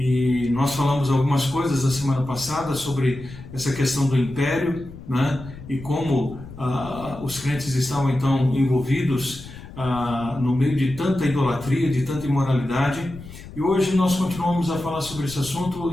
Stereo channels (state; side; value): noise; left; rumble, 15 dB below the sound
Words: nós falamos algumas coisas na semana passada sobre essa questão do império, né, e como os crentes estavam então envolvidos no meio de tanta idolatria, de tanta imoralidade. E hoje nós continuamos a falar sobre esse